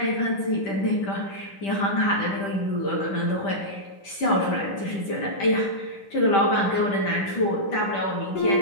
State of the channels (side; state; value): right; late; 10 ms